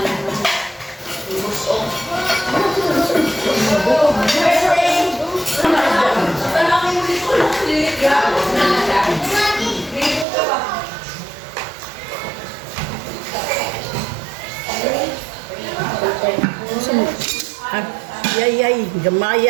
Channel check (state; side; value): drops out; left; at 10.2 s